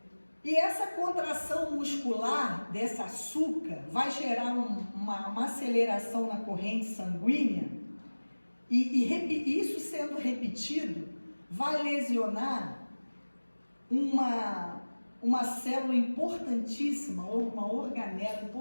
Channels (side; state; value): both; inverted; correlation -1.00